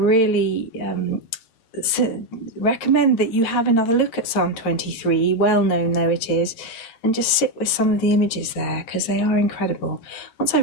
recommend that you have another look at Psalm 23, well known though it is, and just sit with some of the images there, because they are incredible. Once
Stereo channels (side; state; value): right; late; 8.8 ms